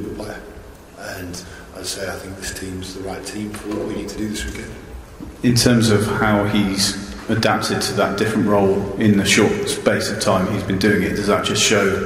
player, and I'd say I think this team's the right team for what we need to do this weekend. In terms of how he's adapted to that different role in the short space of time he's been doing it, does that just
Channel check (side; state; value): both; identical; correlation 1.00